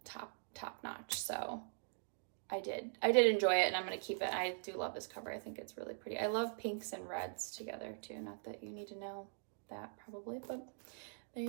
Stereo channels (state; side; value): silent; left; digital silence